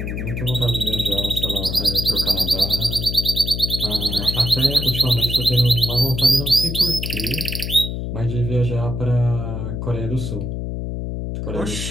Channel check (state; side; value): noise; left; hum, 4 dB below the sound